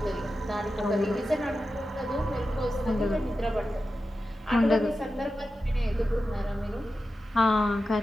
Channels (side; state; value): both; normal; correlation 0.91